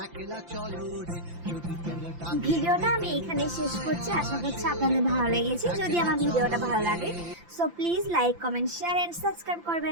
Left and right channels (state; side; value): late; left; 5.8 ms